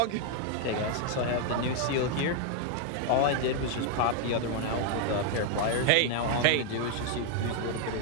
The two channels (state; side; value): different; both; correlation 0.00